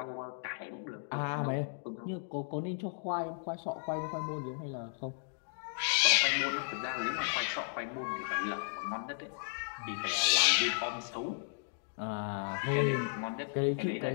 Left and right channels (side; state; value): right; silent; digital silence